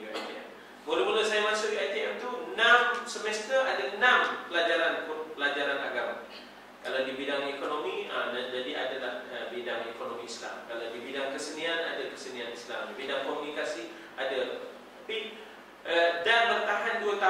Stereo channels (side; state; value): both; identical; correlation 1.00